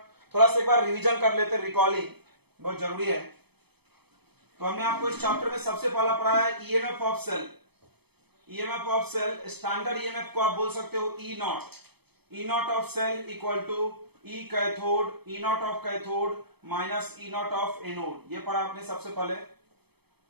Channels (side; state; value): left; late; 0.97 ms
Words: रिवीजन कर लेते, रिकॉलिंग बहुत जरूरी है। तो हमने आपको इस चैप्टर में सबसे पहला पढ़ाया है EMF of cell. EMF of cell, standard EMF को आप बोल सकते हो E naught. E naught of cell equal to E cathode, E naught of cathode minus E naught of anode. ये पढ़ा आपने सबसे पहले।